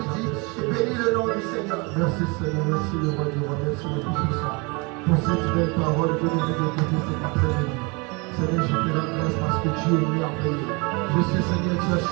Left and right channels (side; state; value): left; quieter; 29.0 dB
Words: Bénis le nom du Seigneur. Merci Seigneur. Merci le roi du roi. Merci le Tout-Puissant. Pour cette belle parole que nous avons écoutée cet après-midi. Seigneur, je te rends grâce parce que tu es merveilleux. Je sais, Seigneur, tu as